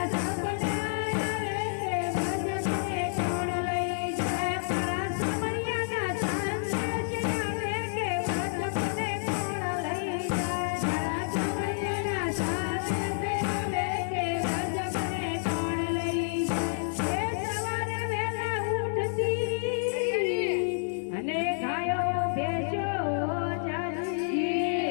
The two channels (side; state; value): right; silent; 58 dB below the other